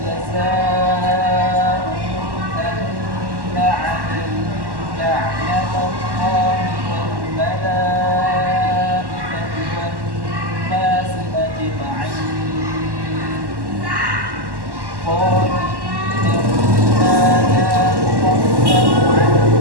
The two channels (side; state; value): left; late; 1.1 ms